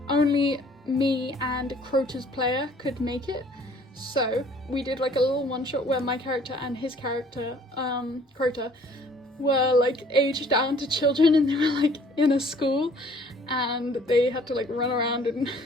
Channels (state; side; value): normal; both; correlation 0.57